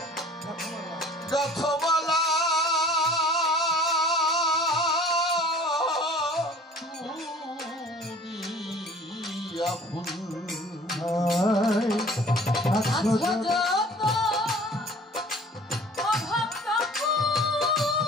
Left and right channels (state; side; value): normal; both; correlation 0.49